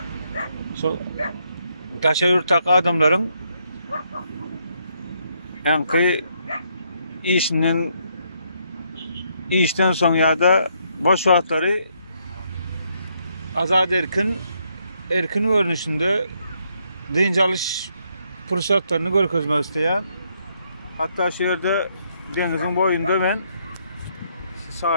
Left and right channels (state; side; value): inverted; both; correlation -0.74